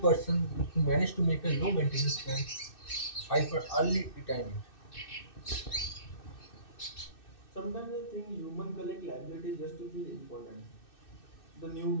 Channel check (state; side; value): late; right; 2.6 ms